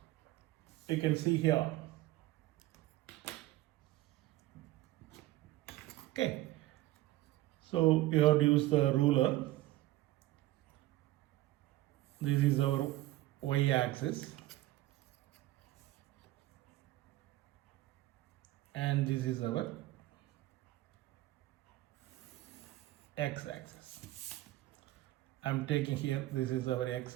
You can see here. Okay, so you have to use the ruler. This is our y-axis and this is our x-axis. I'm taking here, this is our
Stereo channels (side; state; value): left; quieter; 16.5 dB